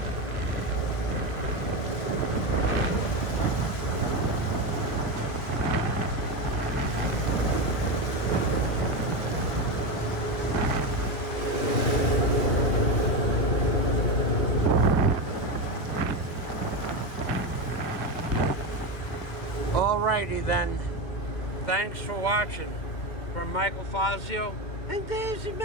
Alrighty then. Thanks for watching. From Michael Fazio and Daisy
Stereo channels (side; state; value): right; late; 2.2 ms